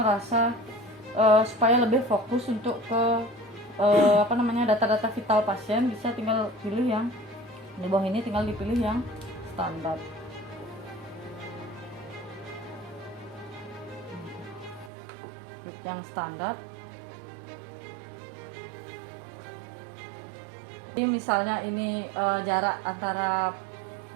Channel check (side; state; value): left; drops out; at 14.9 s